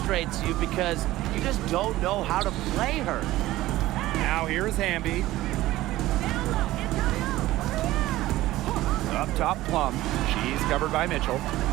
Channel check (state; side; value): quieter; left; 16.4 dB